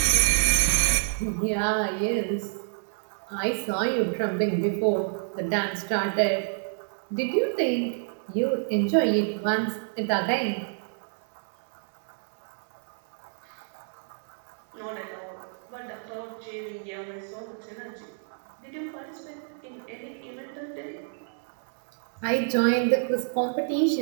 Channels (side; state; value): left; silent; digital silence